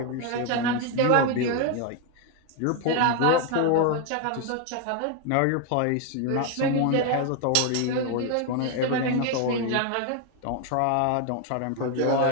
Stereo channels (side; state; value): both; different; correlation 0.01